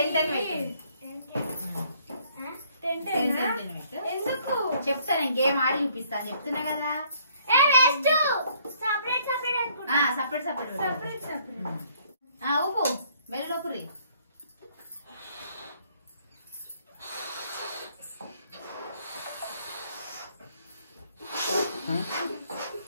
ఎందుకు చెప్తా, నేను గేమ్ ఆడి చూపిస్తా చెప్తున్నా కదా. సపరేట్ ఉప్పు మెల్లపురి.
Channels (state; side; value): inverted; both; correlation -0.64